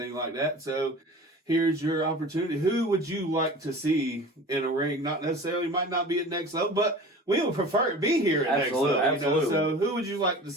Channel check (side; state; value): both; normal; correlation 0.38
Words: like that. So here's your opportunity. Who would you like to see in a ring? Not necessarily, might not be at next level, but we would prefer it be here at next level. Absolutely. So who would you like to